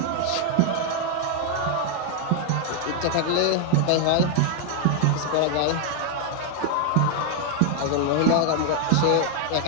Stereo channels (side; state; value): both; different; correlation 0.00